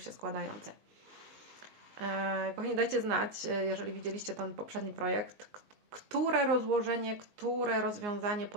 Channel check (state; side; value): late; left; 19 ms